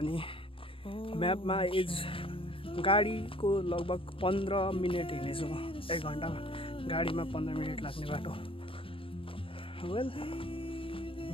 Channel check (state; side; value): late; right; 0.26 ms